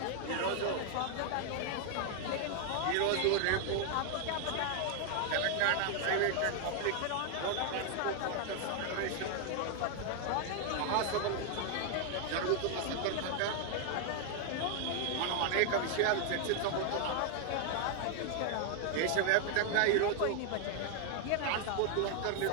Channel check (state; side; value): different; both; correlation 0.00